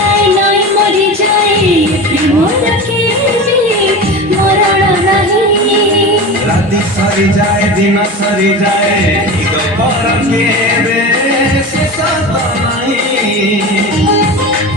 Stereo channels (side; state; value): both; normal; correlation 0.29